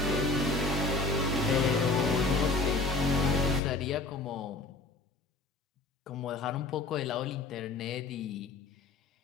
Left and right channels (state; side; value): quieter; right; 3.4 dB